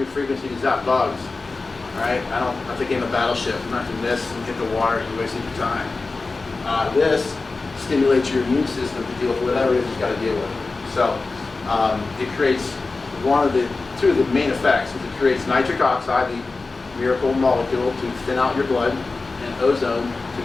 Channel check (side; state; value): right; quieter; 3.8 dB